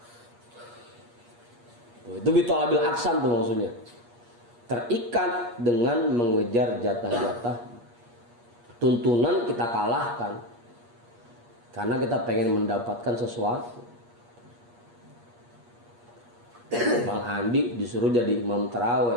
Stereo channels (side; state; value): left; late; 8.4 ms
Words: Itu bitolabil aksam tuh maksudnya. Terikat dengan mengejar jatah-jatah. Tuntunan kita kalahkan karena kita pengen mendapatkan sesuatu. Bang Andi disuruh jadi imam